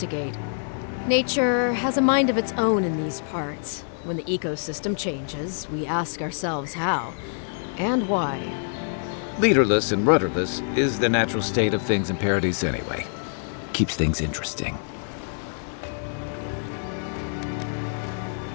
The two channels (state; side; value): silent; right; digital silence